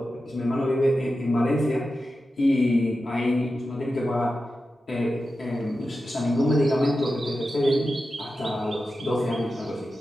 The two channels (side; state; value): both; normal; correlation 0.92